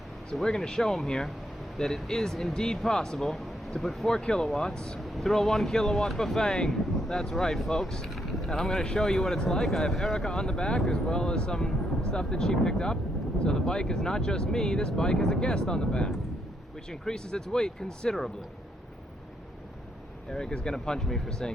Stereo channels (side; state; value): both; normal; correlation 0.76